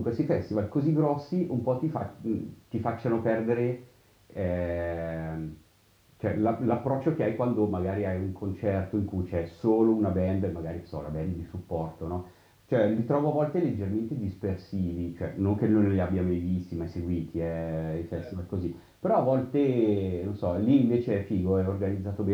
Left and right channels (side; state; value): both; identical; correlation 1.00